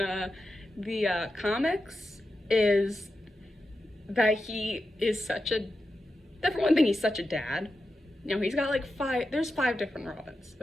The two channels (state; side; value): normal; both; correlation 0.90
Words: the comics is that he is such a, for one thing, he's such a dad. You know, he's got like there's 5 different Robins